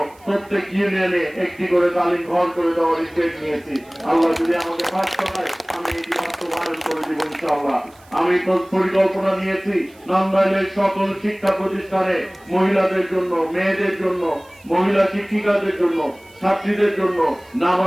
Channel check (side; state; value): right; noise; hiss, 28 dB below the sound